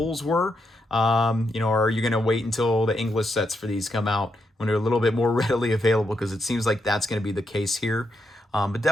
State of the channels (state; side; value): normal; both; correlation 0.82